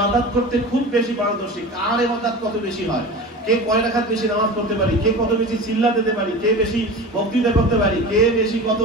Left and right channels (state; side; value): normal; both; correlation 0.33